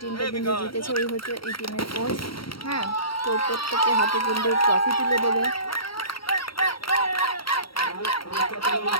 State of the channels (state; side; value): late; right; 0.74 ms